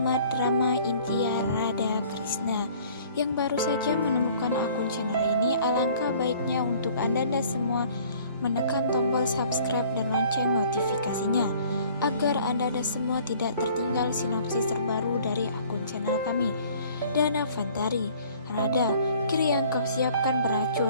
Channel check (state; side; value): inverted; both; correlation -0.53